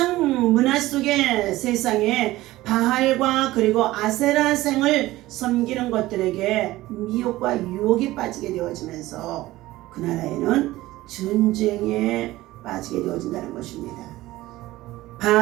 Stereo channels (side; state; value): left; quieter; 17.2 dB